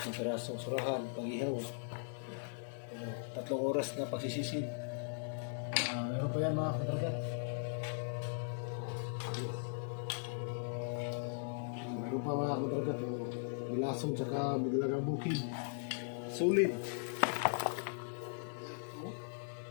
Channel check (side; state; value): right; silent; 52 dB below the other